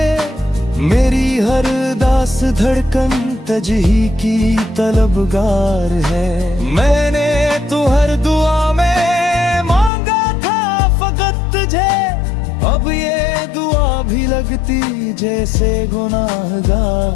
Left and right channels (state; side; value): drops out; right; at 9.9 s